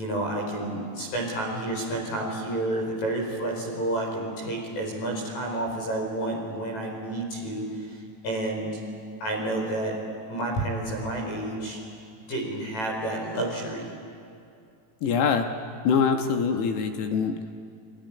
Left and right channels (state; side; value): late; right; 18 ms